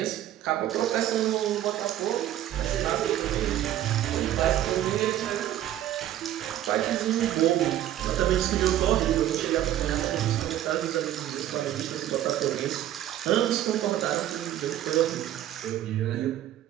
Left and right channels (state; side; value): quieter; left; 12.5 dB